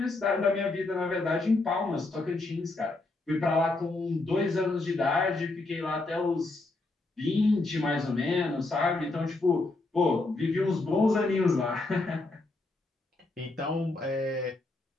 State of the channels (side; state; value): right; quieter; 3.1 dB